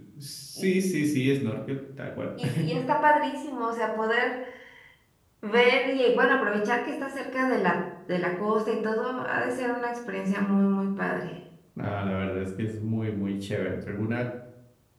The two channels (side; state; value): both; identical; correlation 1.00